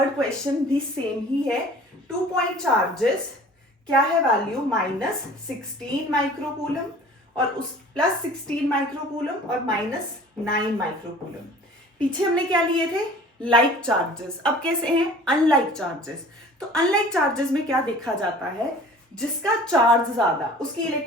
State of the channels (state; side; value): normal; both; correlation 0.46